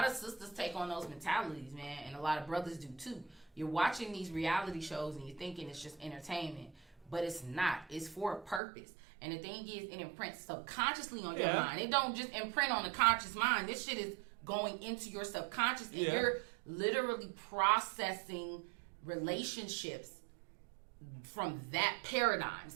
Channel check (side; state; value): left; drops out; at 8.6 s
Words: of sisters take on those mentalities, man, and a lot of brothers do too. You're watching these reality shows and you're thinking it's just entertainment. But it's not. It's for a purpose. And the thing is, it imprints subconsciously on your mind. It don't just imprint on the conscious mind. This shit is going into your subconscious, and you're literally processing relationships from that paradigm.